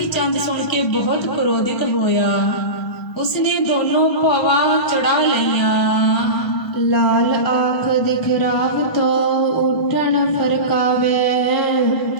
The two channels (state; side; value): late; right; 1.4 ms